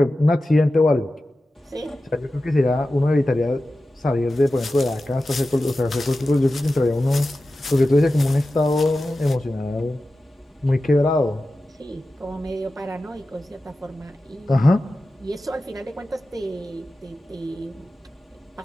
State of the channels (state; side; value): normal; both; correlation 0.94